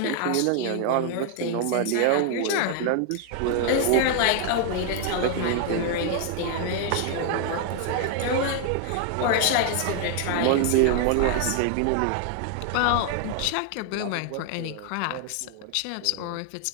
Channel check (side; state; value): both; different; correlation 0.00